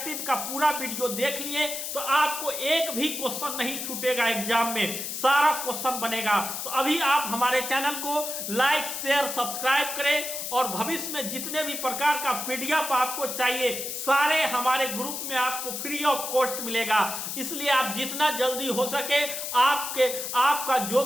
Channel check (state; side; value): noise; left; hiss, 5 dB below the sound